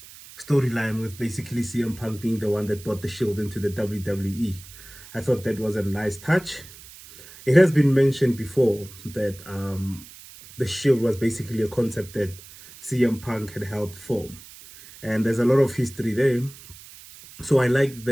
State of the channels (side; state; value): right; noise; hiss, 19 dB below the sound